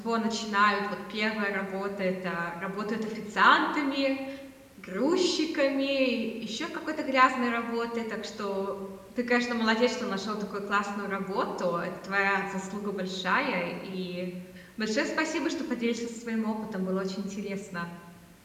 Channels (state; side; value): identical; both; correlation 1.00